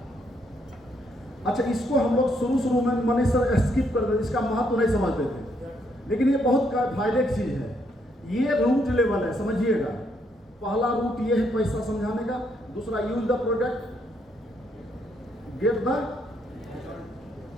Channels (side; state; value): both; normal; correlation 0.73